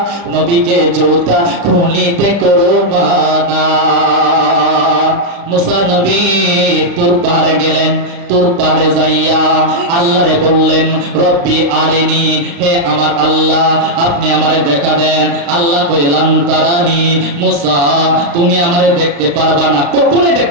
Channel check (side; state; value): left; late; 35 ms